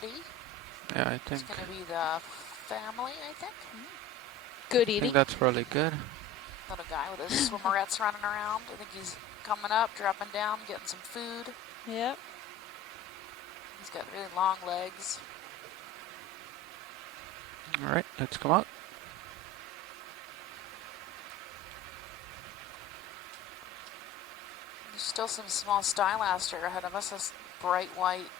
Yeah, I think. It's going to be the family, I think. Good I eating. think that's probably good. Little guy with his swimmerettes running around. I think he's coming up, dropping down, getting some food. Yep. He's got really long legs. All right, let's come out. There's still some small stylaster ahead of us. This bright white,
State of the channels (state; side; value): normal; both; correlation 0.36